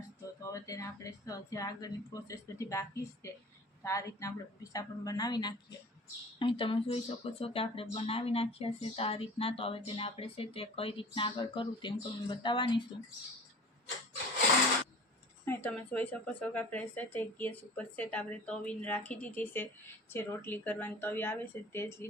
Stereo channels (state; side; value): normal; both; correlation 0.41